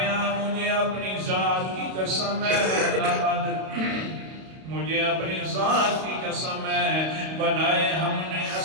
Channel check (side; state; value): left; late; 32 ms